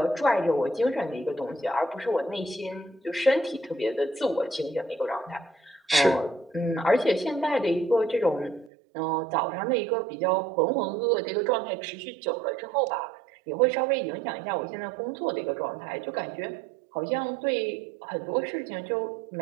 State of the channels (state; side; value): drops out; left; at 8.7 s